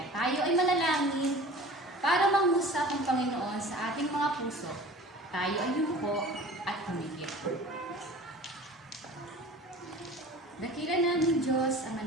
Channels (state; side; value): normal; both; correlation 0.42